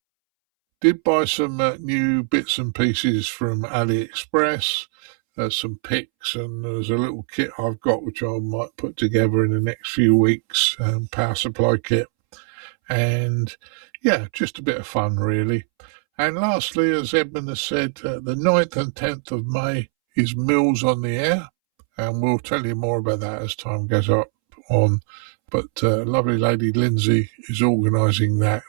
Did buy some new bits and pieces from AliExpress, some picks, and there's a little kit I've got which I might put together in the next few weeks, power supply kit. And yeah, just a bit of fun really. And lastly, as Edmund has said, the 9th and 10th of May is Mills on the Air, and we'll tell you more about that as time goes on. But lovely lady Lindsay is organising that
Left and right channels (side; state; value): left; silent; 65 dB below the other